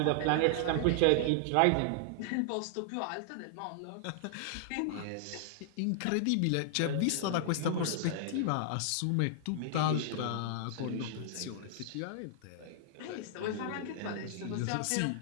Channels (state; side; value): different; both; correlation -0.01